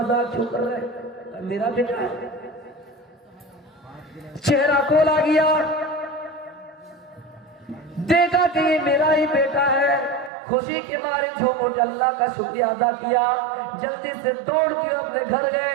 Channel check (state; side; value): drops out; left; at 10.3 s